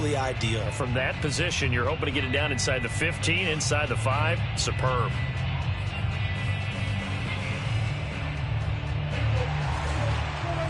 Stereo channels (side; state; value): both; identical; correlation 1.00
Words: ideal. From that position, you're hoping to get it down inside the 15, inside the 5. Superb.